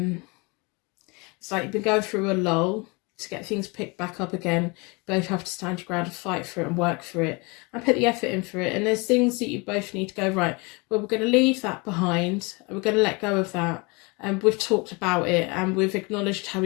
It's like you've been going through a lull. to get things picked back up again. You both have to stand your ground and fight for it and work for it and put the effort in for it. And there's things that you both need to go, right, well, we're going to leave that behind and we're going to let go of that. And we've talked about it and we've acknowledged how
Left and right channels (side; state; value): right; quieter; 28.3 dB